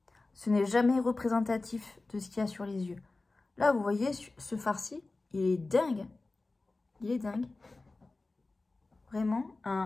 ce n'est jamais représentatif de ce qu'il y a sur les yeux. Là, vous voyez, ce fard-ci, il est dingue. Il est dingue. Vraiment,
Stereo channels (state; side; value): quieter; right; 3.3 dB